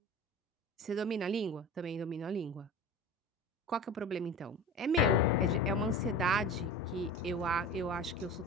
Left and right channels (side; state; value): both; normal; correlation 0.34